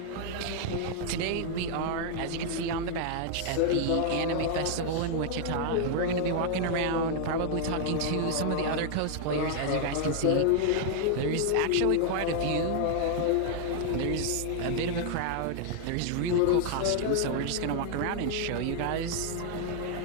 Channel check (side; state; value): both; different; correlation 0.00